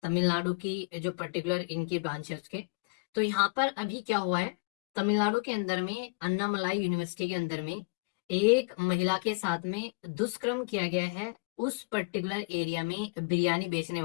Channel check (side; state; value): right; quieter; 32.2 dB